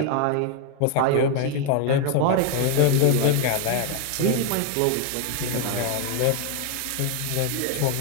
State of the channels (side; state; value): both; different; correlation 0.01